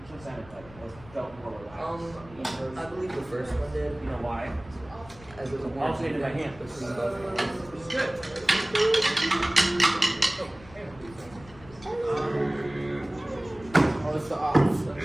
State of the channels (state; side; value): noise; left; rumble, 21 dB below the sound